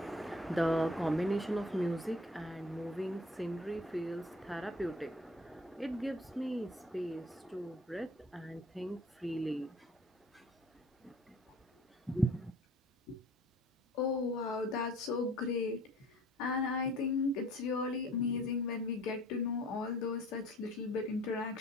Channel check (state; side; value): normal; both; correlation 0.51